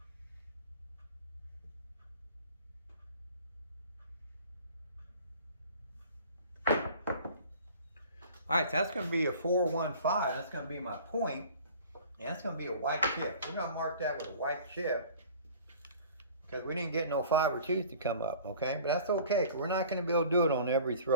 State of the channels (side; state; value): both; inverted; correlation -0.46